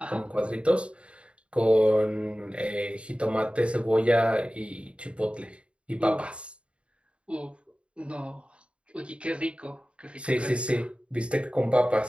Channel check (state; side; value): late; left; 0.059 ms